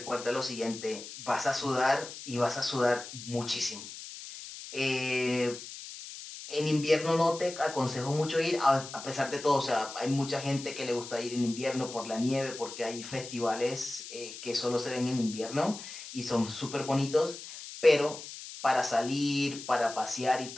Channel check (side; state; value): left; noise; hiss, 12 dB below the sound